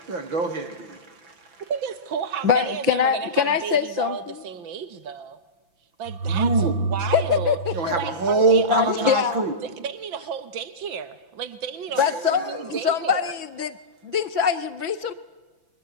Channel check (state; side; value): late; left; 5.9 ms